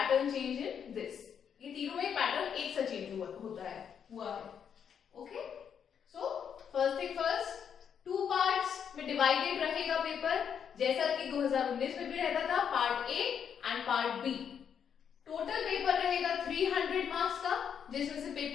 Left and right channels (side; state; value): right; quieter; 7.8 dB